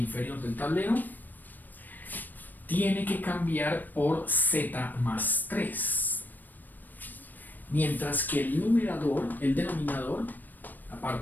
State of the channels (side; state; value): right; late; 0.089 ms